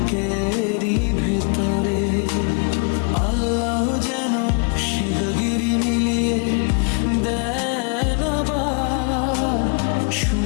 ভেতরে। আল্লাহ যেন শিগগিরি মিলিয়ে দেন আবার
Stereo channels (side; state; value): right; quieter; 38.8 dB